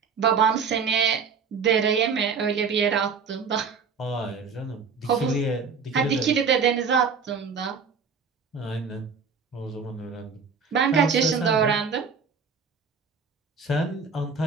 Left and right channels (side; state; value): left; quieter; 5.6 dB